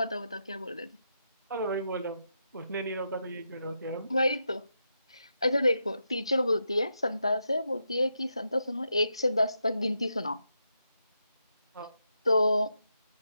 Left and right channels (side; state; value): both; inverted; correlation -0.84